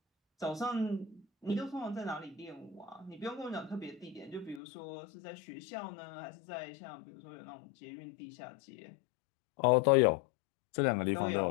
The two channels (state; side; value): drops out; right; at 4.6 s